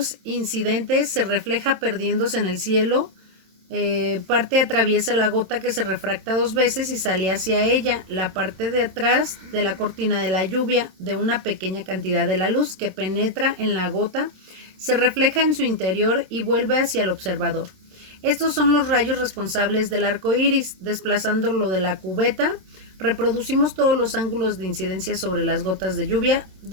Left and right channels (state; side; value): late; left; 26 ms